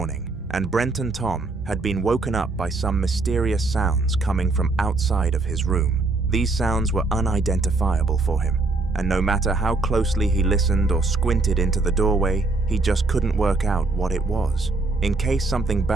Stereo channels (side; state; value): left; quieter; 3.4 dB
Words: and Brent and Tom had been woken up by some mysterious sounds coming from outside of his room. These sounds were unidentifiable for him, and no matter how closely he listened or squinted into the doorway, he just couldn't work out what it was. In case something